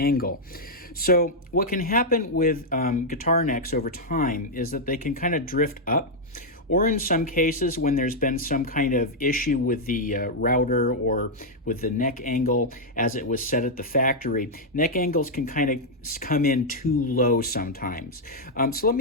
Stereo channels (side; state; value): both; normal; correlation -0.03